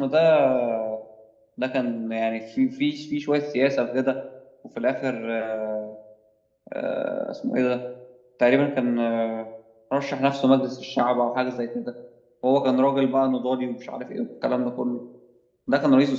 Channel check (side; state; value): both; identical; correlation 1.00